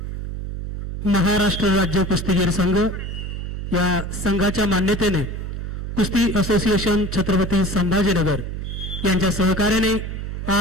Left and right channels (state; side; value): noise; right; hum, 6 dB below the sound